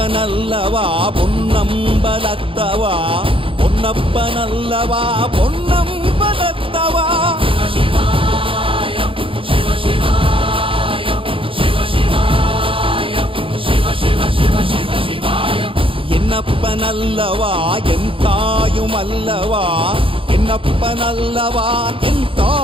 பொன்னம்பலத்தவா, பொன்னப்பனல்லவா பொன்னம்பலத்தவா. என்னப்பனல்லவா என் தாயுமல்லவா, என்னப்பனல்லவா என்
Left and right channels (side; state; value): left; late; 0.26 ms